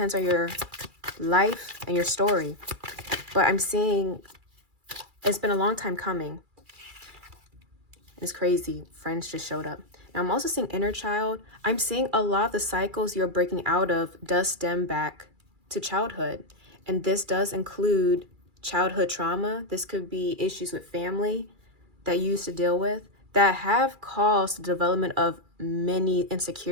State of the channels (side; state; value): left; late; 2.3 ms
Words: on your life and your story. But I'm seeing it's been a long time coming. It's crazy. Friends just showed up. Now, I'm also seeing inner child. I'm seeing a lot of the cycles you're breaking out of does stem back to childhood. And this does include childhood trauma. This could be issues with family that you used to deal with that have caused the development of many